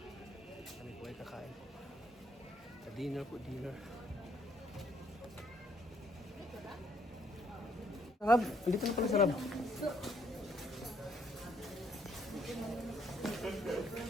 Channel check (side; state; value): both; normal; correlation 0.68